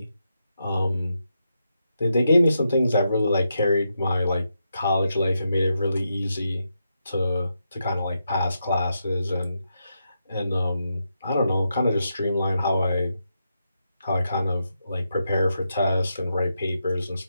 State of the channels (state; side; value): inverted; both; correlation -0.84